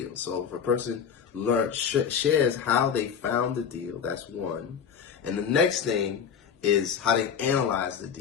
So if a person shares how they found the deal, that's one. And the next thing is how they analyze the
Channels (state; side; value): quieter; right; 7.3 dB